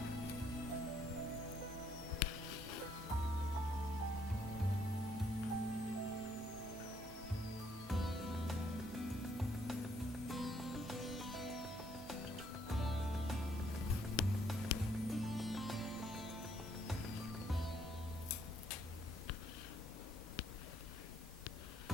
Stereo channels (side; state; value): both; normal; correlation 0.69